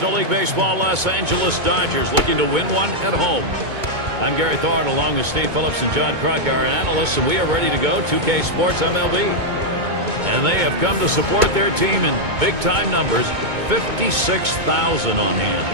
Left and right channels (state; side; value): late; left; 2.2 ms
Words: League Baseball Los Angeles Dodgers looking to win one at home. I'm Gary Thorne along with Steve Phillips and John Kruk, our analysts, and we are ready to go. 2K Sports MLB. And they have come to support their team in big-time numbers, 56,000 on